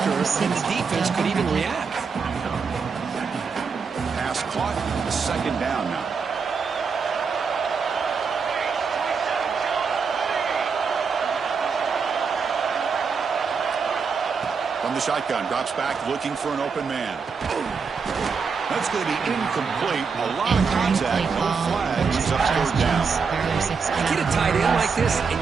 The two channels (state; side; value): quieter; left; 5.5 dB